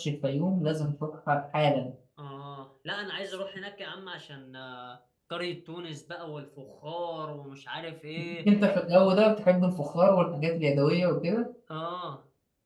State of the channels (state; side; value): identical; both; correlation 1.00